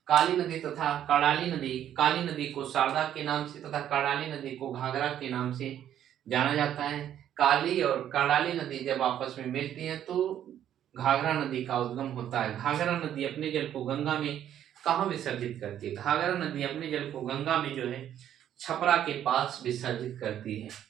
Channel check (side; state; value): left; quieter; 10.6 dB